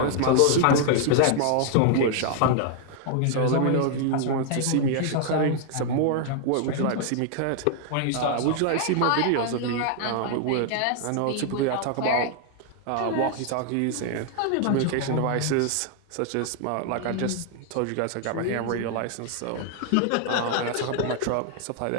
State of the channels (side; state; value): both; different; correlation 0.00